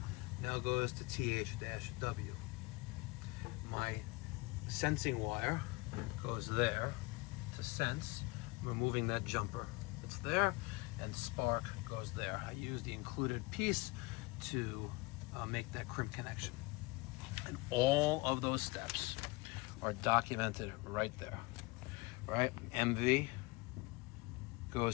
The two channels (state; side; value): quieter; right; 24.4 dB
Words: now goes to TH-W. My sensing wire goes there to sense, removing that jumper that's there, and spark goes there. I use the included piece to make that crimp connection. And all of those steps are documented right there, right? MV